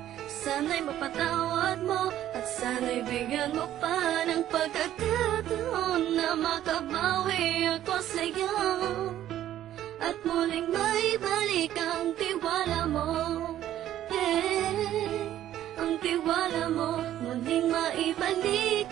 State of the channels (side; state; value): left; quieter; 12.2 dB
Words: Sana'y mapatawad mo at sana'y bigyan mo pa ng pagkakataon na makabawi ako sa'yo at muling maibalik ang tiwala mo. Ang tiwala mo, muling maibalik